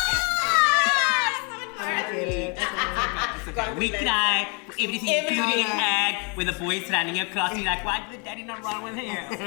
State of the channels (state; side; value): quieter; right; 33.8 dB